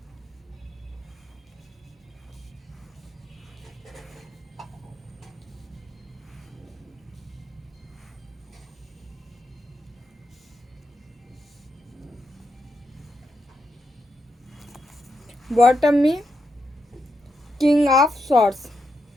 बॉटम में किंग ऑफ सॉर्ड्स,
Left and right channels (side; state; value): both; normal; correlation 0.83